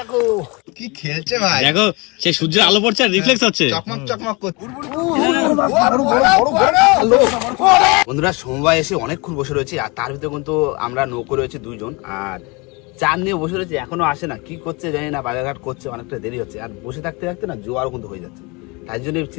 কি খেলছে ভাই, দেখো সেই সূর্যের আলো পড়ছে আর রিফ্লেক্স হচ্ছে। চকমক চকমক করছে। বন্ধুরা সমবায় এসে অনেকক্ষণ বসে রয়েছে, আর তার ভিতরে কিন্তু আমরা নৌকো রয়েছে দুইজন, আর চার নিয়ে বসে রয়েছে, এখনো আসে না, কি করছে জানি না, বাজারঘাট করছে, অনেকটা দেরি হচ্ছে, আর বসে থাকতে থাকতে না জোয়ারও কিন্তু হয়ে যাচ্ছে। তাই জন্য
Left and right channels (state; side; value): quieter; right; 27.5 dB